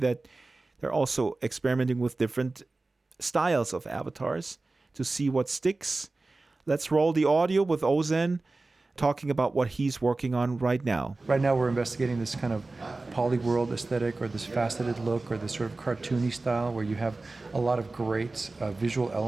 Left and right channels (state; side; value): quieter; left; 3.3 dB